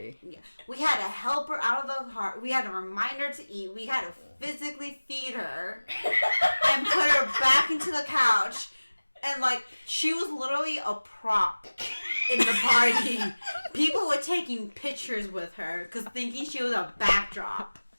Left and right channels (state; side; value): inverted; both; correlation -1.00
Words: her. Yeah, we had to help her out of the heart. We had to remind her to eat. We had to physically feed her and put her back into the couch. And like she was literally a prop in the party. People were taking pictures with her because thinking she was a backdrop.